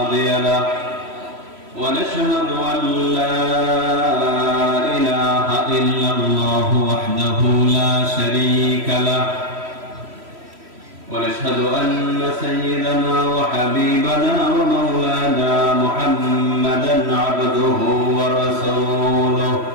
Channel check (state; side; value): late; left; 3.1 ms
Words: له. ونشهد أن لا إله إلا الله وحده لا شريك له. ونشهد أن سيدنا وحبيبنا ومولانا محمدا عبده ورسوله